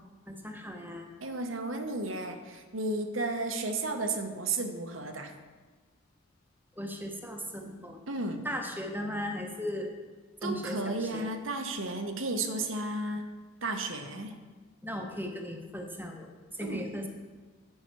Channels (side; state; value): both; normal; correlation 0.25